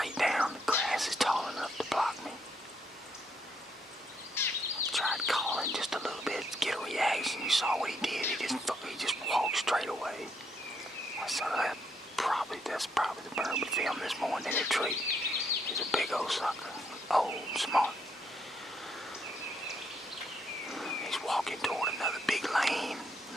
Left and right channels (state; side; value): normal; both; correlation 0.73